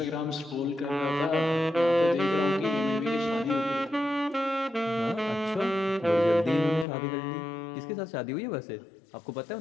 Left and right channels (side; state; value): right; drops out; at 6.9 s